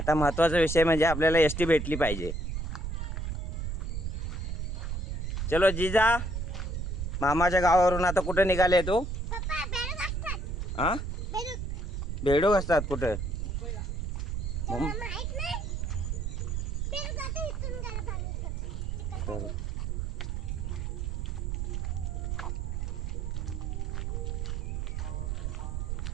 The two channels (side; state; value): right; noise; rumble, 2 dB below the sound